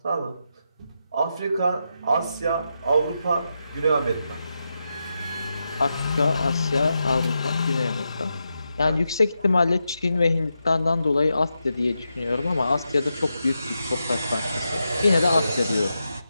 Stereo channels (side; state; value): both; inverted; correlation -0.87